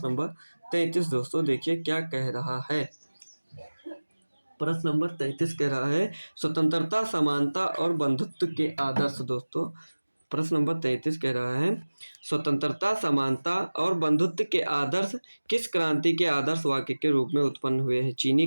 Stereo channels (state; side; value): inverted; both; correlation -1.00